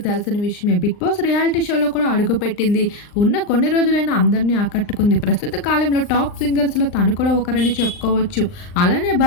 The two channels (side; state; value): right; late; 39 ms